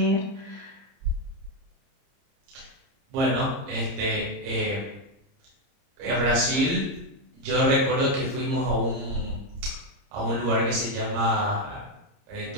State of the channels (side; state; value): left; late; 30 ms